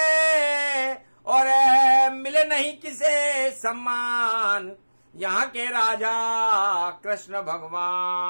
और मिले नहीं किसे सम्मान। यहाँ के राजा कृष्ण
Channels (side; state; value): both; inverted; correlation -1.00